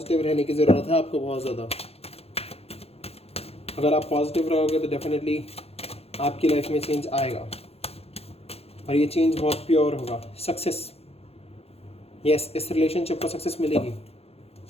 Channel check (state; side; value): late; right; 0.29 ms